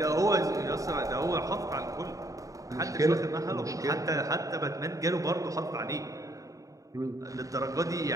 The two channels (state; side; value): late; left; 0.16 ms